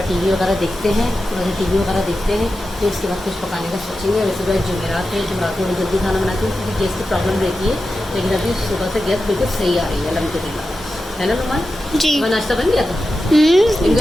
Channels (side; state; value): both; normal; correlation 0.91